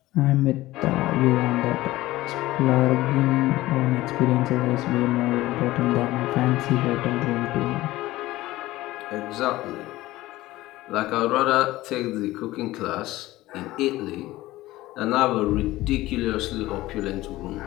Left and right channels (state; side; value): quieter; right; 17.3 dB